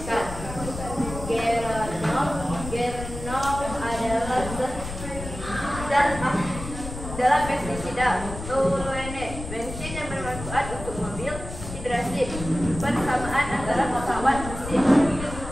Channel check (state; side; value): noise; left; rumble, 9 dB below the sound